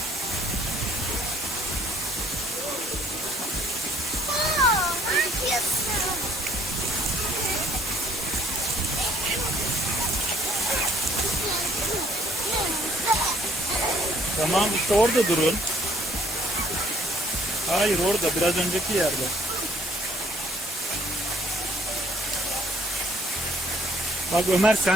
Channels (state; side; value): normal; both; correlation 0.62